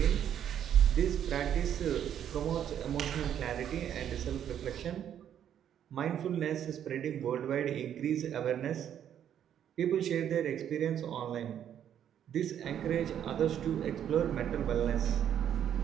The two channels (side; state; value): left; quieter; 9.7 dB